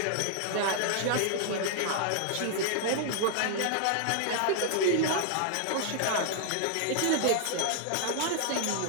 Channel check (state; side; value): different; both; correlation 0.00